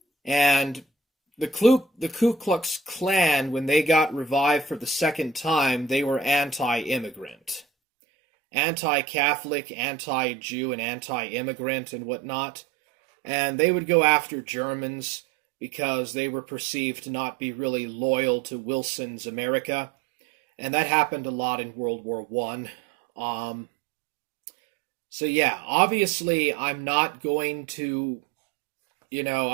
and the Ku Klux Klan, when they got revived for the second time, they were anti-immigrant. Anti-Catholic, anti-Jew, and anti-immigrant and whatnot. And they would go after Germans because they were perceived to not be really loyal to Wilson's America. And that happened a lot in World War I. So yeah, obviously I'm not going to,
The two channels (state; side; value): drops out; left; at 7.7 s